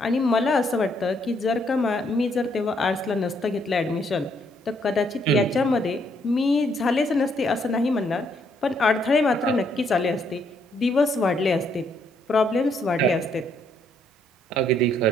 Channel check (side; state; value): both; normal; correlation 0.71